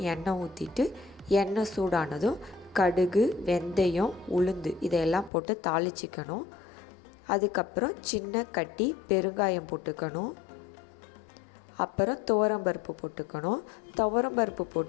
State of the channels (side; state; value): right; drops out; at 5.3 s